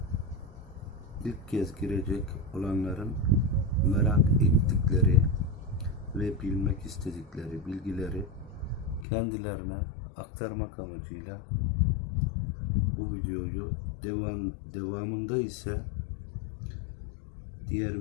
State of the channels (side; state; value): right; drops out; at 9.1 s